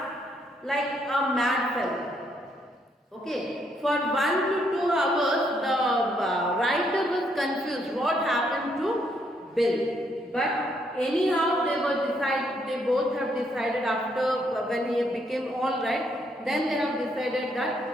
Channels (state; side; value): normal; both; correlation 0.73